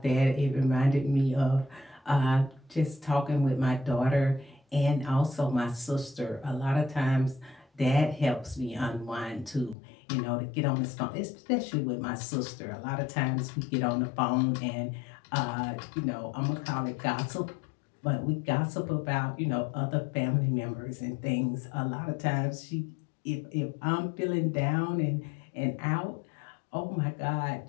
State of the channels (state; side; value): drops out; right; at 9.8 s